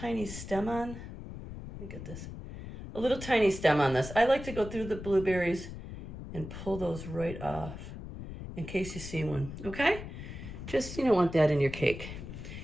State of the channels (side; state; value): left; noise; rumble, 10 dB below the sound